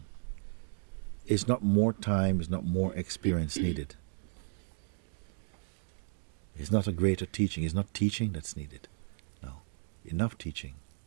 It's not more time, it's not more experience needed. It's not a greater teaching, it's not teaching that's needed. No, enough teaching.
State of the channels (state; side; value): silent; left; digital silence